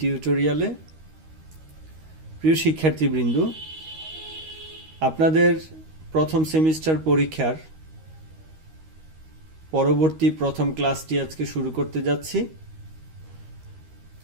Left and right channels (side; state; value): left; late; 13 ms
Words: প্রিয় শিক্ষার্থীবৃন্দ, আপনাদের প্রথম সেমিস্টার পরীক্ষার পরবর্তী প্রথম ক্লাসটি আজকে শুরু করতে যাচ্ছি।